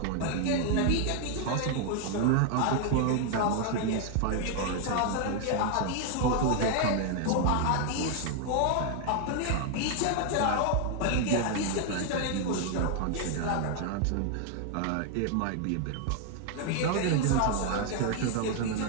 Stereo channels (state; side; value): different; both; correlation 0.00